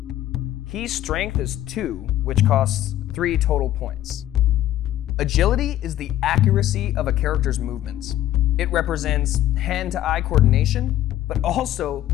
Key's strength is 2, which costs 3 total points. Agility is the accuracy of a character's movements. It represents hand-to-eye coordination, but also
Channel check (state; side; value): quieter; right; 13.0 dB